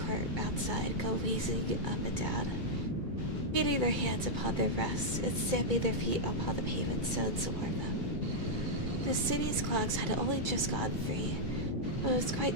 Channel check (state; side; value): late; left; 2.3 ms